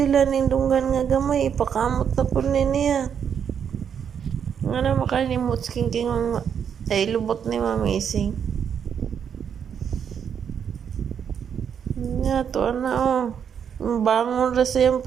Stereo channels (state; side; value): quieter; left; 7.8 dB